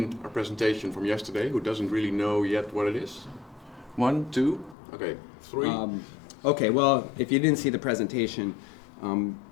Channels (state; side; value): drops out; right; at 4.8 s